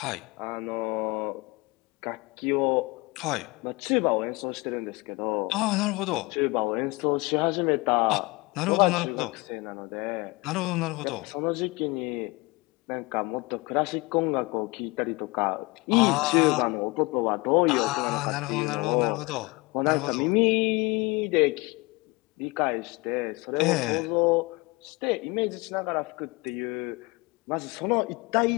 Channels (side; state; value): right; quieter; 25.2 dB